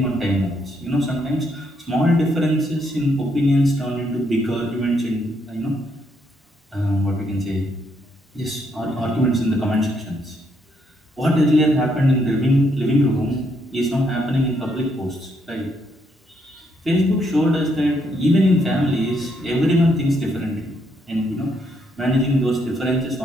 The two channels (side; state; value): both; normal; correlation 0.74